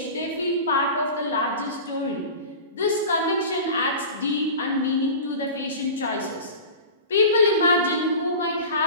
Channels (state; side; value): inverted; both; correlation -0.33